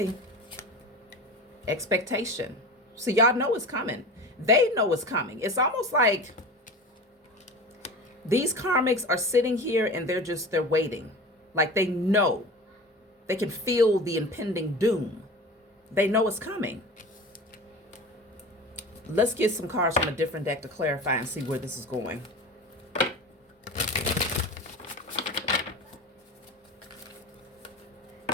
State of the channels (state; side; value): normal; both; correlation 0.33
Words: Expectation. So y'all know it's coming. They know it's coming. It's almost like these karmics are sitting here and they're waiting. Like they know. They can feel the impending doom. They know it's coming. Let's get some cards from a different deck to clarify and see where this is going.